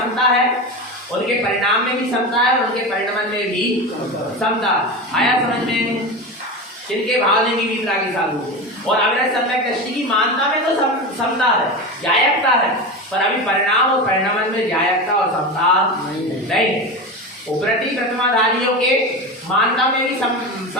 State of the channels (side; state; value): both; normal; correlation 0.23